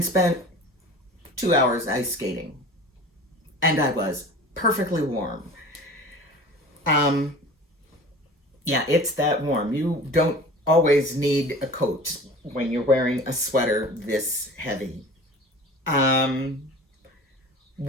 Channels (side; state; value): both; normal; correlation 0.40